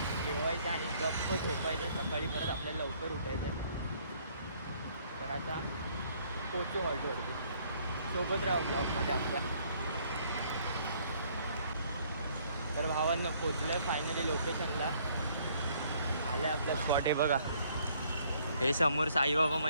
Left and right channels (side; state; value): both; inverted; correlation -0.63